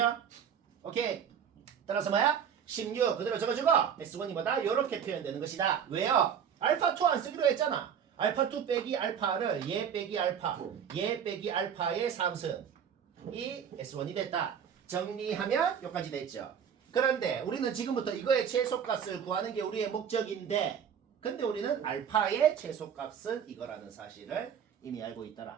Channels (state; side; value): quieter; left; 8.0 dB